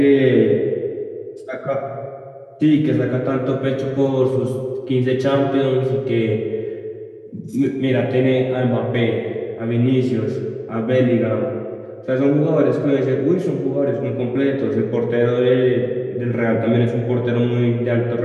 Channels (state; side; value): identical; both; correlation 1.00